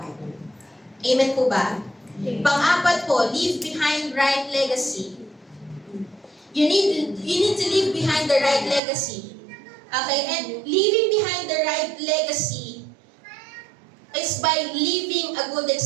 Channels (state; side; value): drops out; left; at 8.8 s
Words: Amen po ba? Pang-apat po, leave behind right legacy. You need to leave behind the right legacy. Okay? And leaving behind the right legacy is by leaving a good